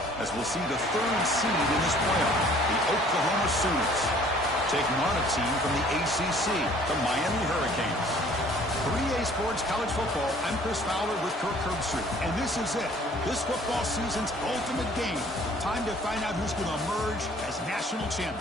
As we'll see the third seed in this playoff, the Oklahoma Sooners, taking on a team from the ACC, the Miami Hurricanes. 3A Sports College Football, I'm Chris Fowler with Kirk Herbstreit, and this is it, this football season's ultimate game. Time to find out who's going to emerge as national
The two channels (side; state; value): both; normal; correlation 0.55